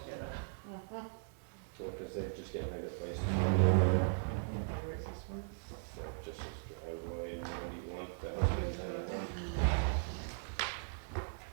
get it. So, because they're just getting ready to place. Where is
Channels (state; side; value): silent; left; digital silence